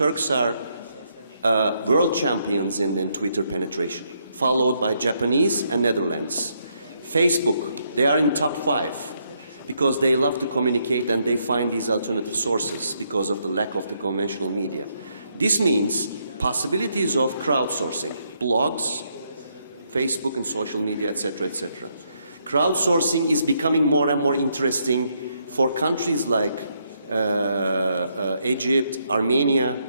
are world champions in Twitter penetration, followed by Japanese and Netherlands. Facebook, they are in top 5 because they love to communicate and they find these alternative sources because of the lack of the conventional media. This means possibilities of crowdsourcing, blogs, Facebook and social media, etc., etc. Crowdsourcing is becoming more and more interesting for countries like Egypt, Armenia,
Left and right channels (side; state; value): both; inverted; correlation -0.75